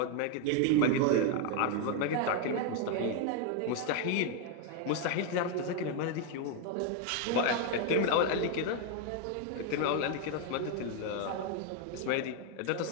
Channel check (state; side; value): different; both; correlation 0.01